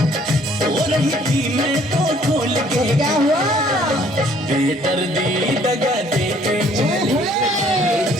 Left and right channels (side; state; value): both; normal; correlation 0.60